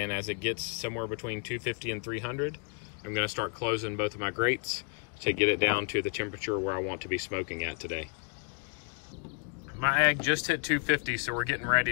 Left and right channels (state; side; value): quieter; right; 38.6 dB